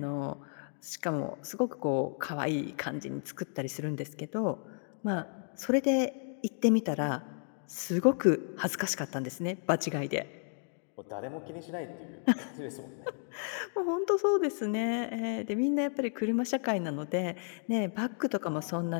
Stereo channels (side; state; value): right; silent; 56 dB below the other